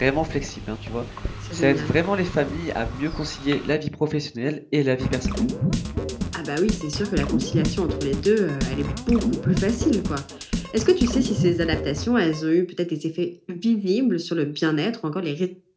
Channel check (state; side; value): identical; both; correlation 1.00